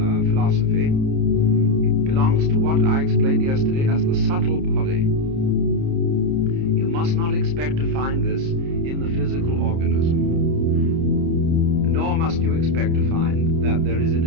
philosophy belongs to what I explained yesterday as the subtle body. You must not expect to find this in the physical organism, nor must you expect to find that there is, in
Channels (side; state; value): left; late; 30 ms